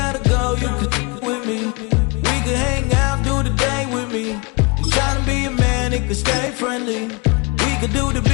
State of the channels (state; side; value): quieter; right; 29.4 dB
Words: go, you could with me. We could hang out, do the day with me. And try to be a man, it could stay friendly. We could do the